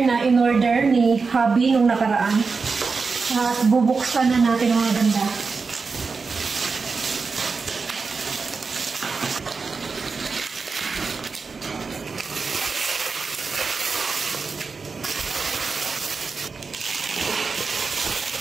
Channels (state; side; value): quieter; left; 4.7 dB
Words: na in-order ni hubby nung nakaraan. At bubuksan na natin mga ganda.